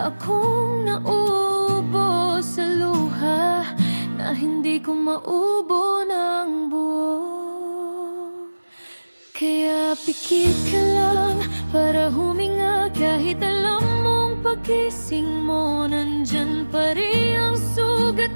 akong naubo sa luha na hindi ko maubo ng buo. Kaya pikit ka lang para huminga, kahit alam mong pagising mo nandyan pa rin ang sugat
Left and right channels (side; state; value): both; inverted; correlation -1.00